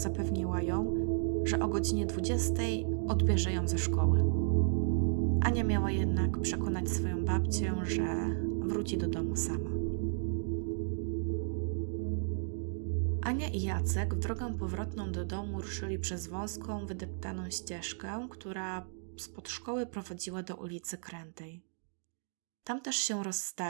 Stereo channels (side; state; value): left; silent; digital silence